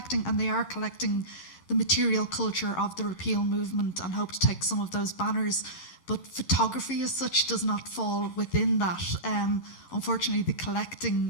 and they are collecting the material culture of the repeal movement and hope to take some of those banners. But photography as such does not fall within that. Unfortunately, the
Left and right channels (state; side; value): late; right; 11 ms